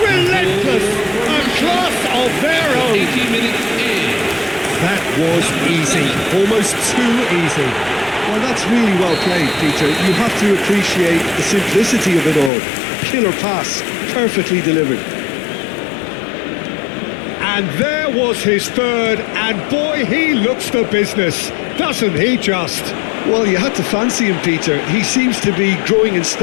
a class of their own. 18 minutes in. That was easy, almost too easy. Well, that's really well played, Peter. You have to appreciate the simplicity of it all. Killer pass, perfectly delivered. And there was his third, and boy, he looks the business, doesn't he just? Well, you had to fancy him, Peter. He seems to be growing in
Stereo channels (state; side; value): drops out; right; at 12.5 s